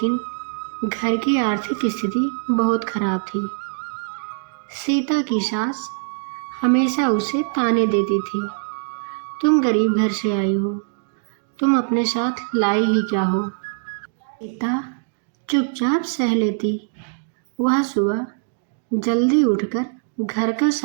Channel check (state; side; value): silent; left; digital silence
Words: घर की आर्थिक स्थिति बहुत खराब थी। सीता की सास हमेशा उसे ताने देती थी, तुम गरीब घर से आई हो, तुम अपने साथ लाई ही क्या हो। सीता चुपचाप सह लेती। वह सुबह जल्दी उठकर घर का